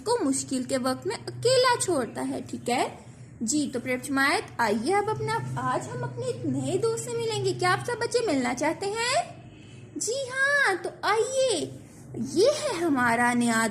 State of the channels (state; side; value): identical; both; correlation 1.00